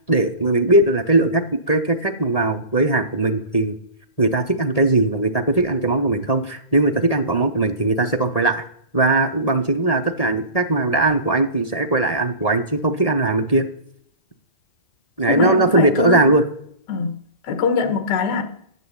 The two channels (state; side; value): late; right; 1.8 ms